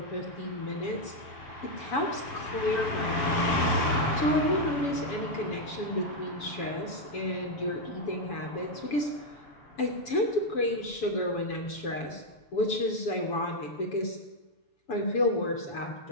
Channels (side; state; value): right; late; 7.1 ms